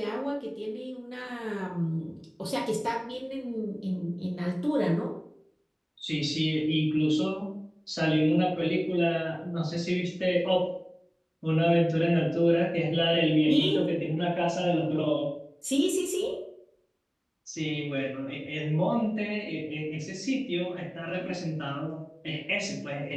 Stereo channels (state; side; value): identical; both; correlation 1.00